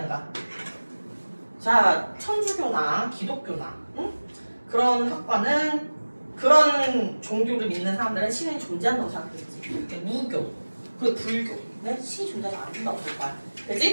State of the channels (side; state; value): both; inverted; correlation -1.00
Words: 자, 천주교나 기독교나 그런 학과는 그런 종교를 믿는 사람들은 신이 존재한다고 생각하겠지. 무교, 그리고 불교는 신이 존재하지 않는다고 볼 거야.